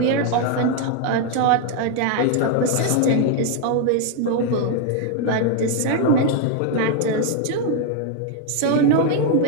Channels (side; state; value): both; different; correlation 0.01